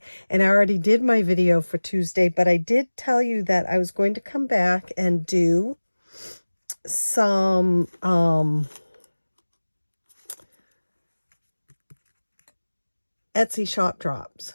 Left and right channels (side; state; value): both; inverted; correlation -1.00